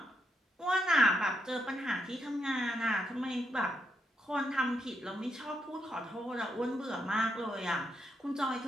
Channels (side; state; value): both; normal; correlation 0.79